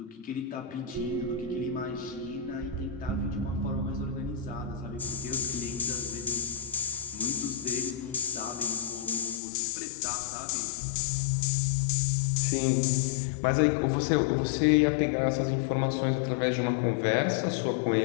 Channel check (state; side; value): drops out; right; at 9.4 s